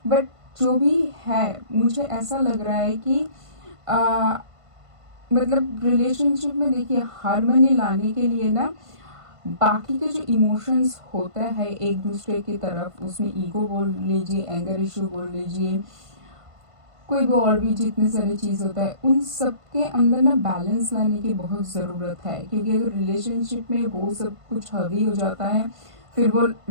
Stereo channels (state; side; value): late; left; 1.5 ms